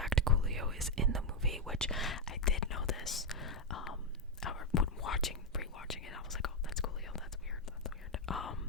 Coolio is in the movie," which I did know this. When rewatching it, I was like, "Oh, that's Coolio. That's weird.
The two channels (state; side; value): normal; both; correlation 0.04